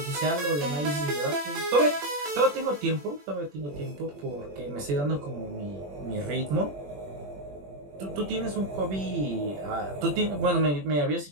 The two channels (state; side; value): late; left; 21 ms